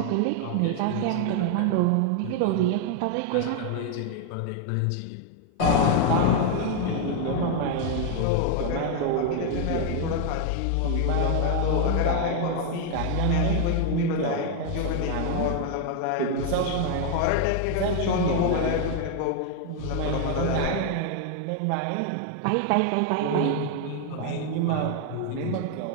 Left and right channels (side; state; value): both; different; correlation 0.00